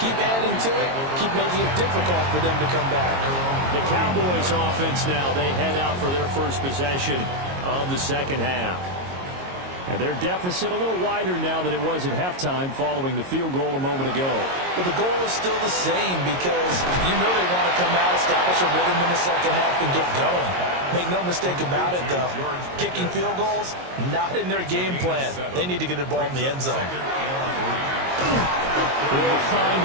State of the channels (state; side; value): late; left; 22 ms